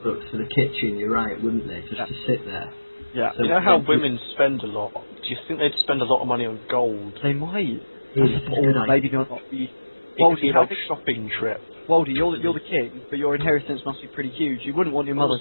for the kitchen, you're right, wouldn't they? Just Yeah. to sit there. Yeah. So You know how women spend a lot? Do you think they'd spend a lot of money on gold? They might. It's That's a a good or idea. maybe not. It Well, could be how like big- a shopping trip. Waldy, you're the king, but your inheritance must be pretty huge. You wouldn't want your mother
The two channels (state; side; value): inverted; both; correlation -1.00